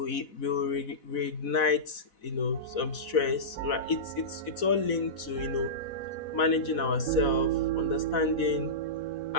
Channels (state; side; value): late; right; 4.1 ms